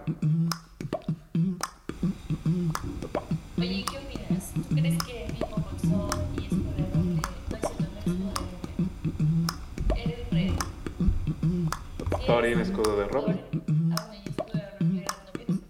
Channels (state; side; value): identical; both; correlation 1.00